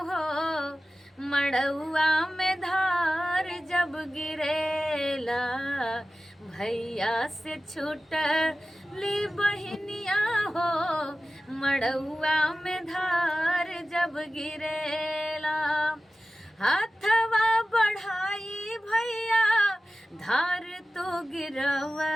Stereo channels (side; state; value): both; normal; correlation 0.95